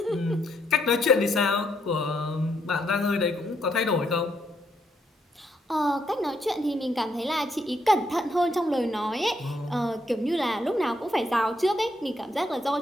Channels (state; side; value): normal; both; correlation 0.75